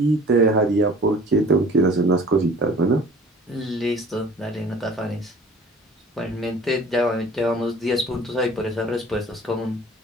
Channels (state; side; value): normal; both; correlation 0.47